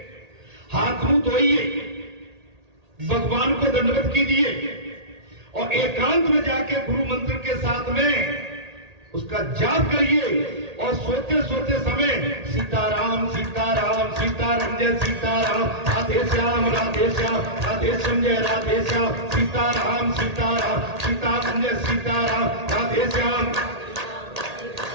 हाथ मुंह धोइए, भगवान को दंडवत कीजिए और एकांत में जाके गुरु मंत्र के साथ में उसका जाप करिए और सोते सोते समय सीताराम सीताराम सीताराम जय सीताराम, राधे श्याम राधे श्याम, राधे श्याम जय राधे श्याम, सीताराम सीताराम सीताराम जय सीताराम, राधे श्याम,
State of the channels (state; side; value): late; left; 1.8 ms